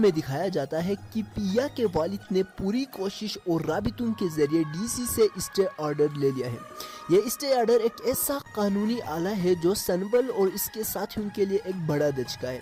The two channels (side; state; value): both; identical; correlation 1.00